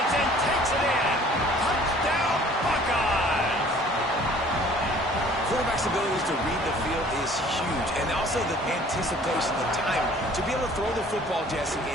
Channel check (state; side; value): normal; both; correlation 0.53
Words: and takes it in. Touchdown, Buckeyes. Quarterback's abilities to read the field is huge, and also the anticipation, the time to be able to throw the football, Jesse,